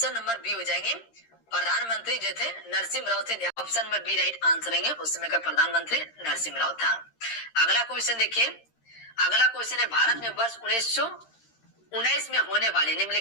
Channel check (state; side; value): late; right; 13 ms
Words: number B हो जाएंगे, प्रधानमंत्री जो थे नरसिम्हा राव थे, option number B right answer है, उस समय का प्रधानमंत्री नरसिम्हा राव था। अगला क्वेश्चन देखिए, अगला क्वेश्चन है भारत में वर्ष 1919 में होने वाले